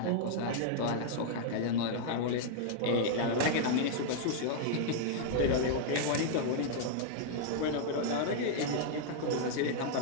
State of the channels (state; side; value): different; both; correlation -0.01